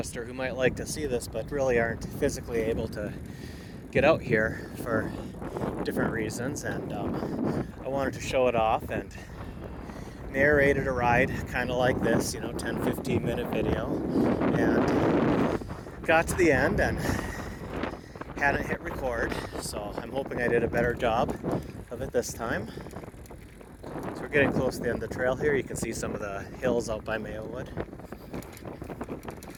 who might like to see this but really aren't physically able to get out here for different reasons, and I wanted to show it off and narrated a ride kind of like this, 10-15 minute video, and got to the end and hadn't hit record, so I'm hoping I did a better job of it this time. So we're getting close to the end of the trail here. You can see some of the hills out by Mayowood.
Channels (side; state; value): both; identical; correlation 1.00